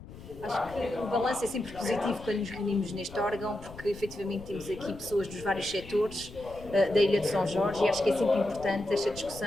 Acho que o balanço é sempre positivo quando nos reunimos neste órgão, porque efetivamente temos aqui pessoas dos vários setores da Ilha de São Jorge e acho que é sempre importante esta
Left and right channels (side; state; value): left; noise; rumble, 16 dB below the sound